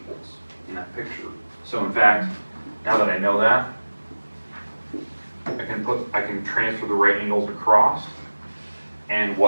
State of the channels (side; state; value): both; inverted; correlation -1.00